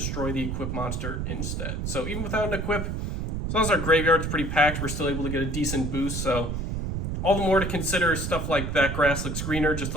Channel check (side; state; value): right; noise; rumble, 3 dB below the sound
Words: the equipped monster instead. So even without an equip, as long as our graveyard's pretty packed, we're still able to get a decent boost. So all the more to consider stuff like That Grass Looks Greener, just